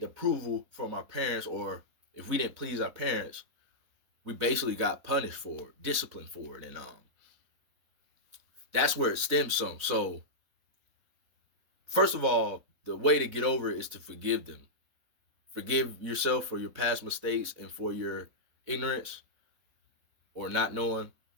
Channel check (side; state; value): left; late; 4.0 ms